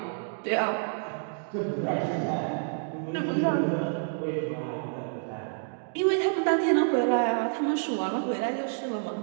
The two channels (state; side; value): silent; left; digital silence